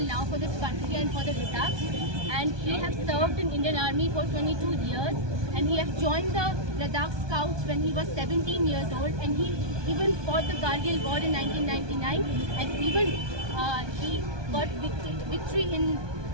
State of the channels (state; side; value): late; left; 1.2 ms